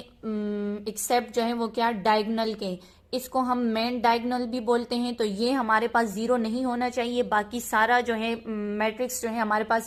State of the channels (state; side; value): identical; both; correlation 1.00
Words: एक्सेप्ट जो है वो क्या, डायगोनल के। इसको हम मेन डायगोनल भी बोलते हैं। तो ये हमारे पास जीरो नहीं होना चाहिए, बाकी सारा जो है मैट्रिक्स जो है हमारे